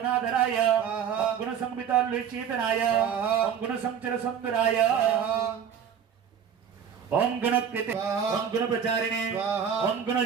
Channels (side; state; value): left; quieter; 8.0 dB